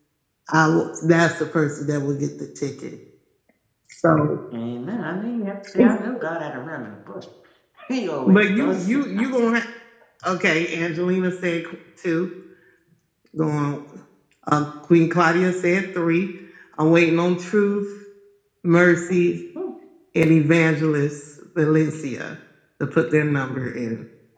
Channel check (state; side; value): identical; both; correlation 1.00